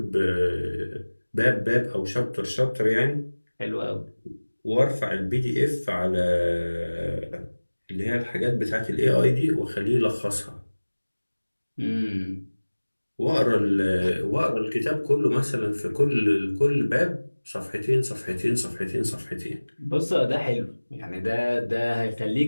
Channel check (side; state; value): both; inverted; correlation -1.00